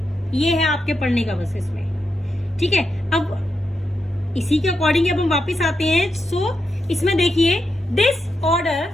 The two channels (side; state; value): both; normal; correlation 0.85